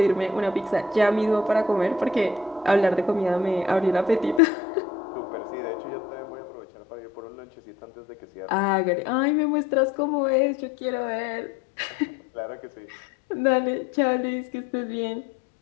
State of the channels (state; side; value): drops out; right; at 4.4 s